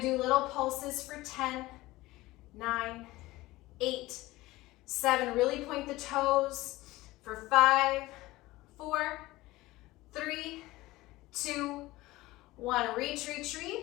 do little pulses for 10, 9, 8, 7. Really point the toes for 5, 4, 3, 2, 1. Reach, reach,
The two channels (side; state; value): right; quieter; 18.8 dB